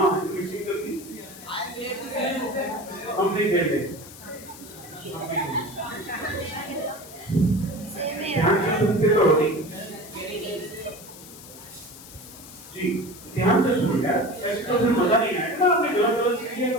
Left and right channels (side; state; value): left; noise; hiss, 17 dB below the sound